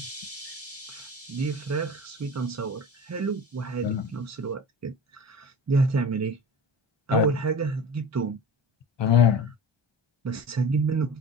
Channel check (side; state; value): both; normal; correlation 0.35